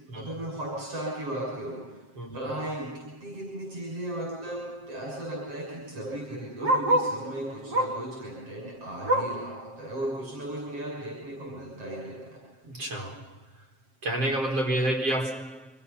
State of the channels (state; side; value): late; left; 7.5 ms